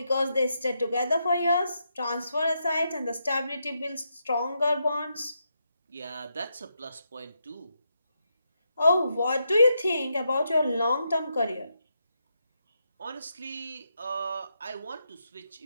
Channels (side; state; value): both; inverted; correlation -0.82